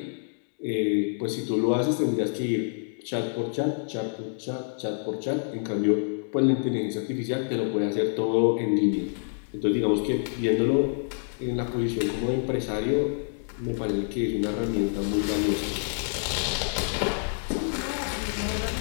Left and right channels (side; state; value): right; silent; digital silence